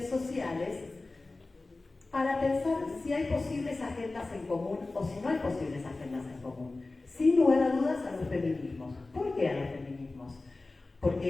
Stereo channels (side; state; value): right; quieter; 3.3 dB